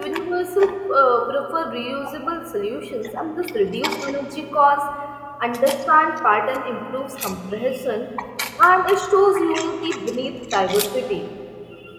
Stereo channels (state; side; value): identical; both; correlation 1.00